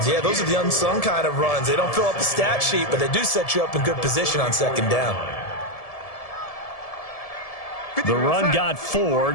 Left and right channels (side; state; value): right; late; 1.7 ms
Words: Yeah, those are the unsung kind of runs. They don't fill up the stat sheet, but they do set you up in good position on 2nd down. The run got 4.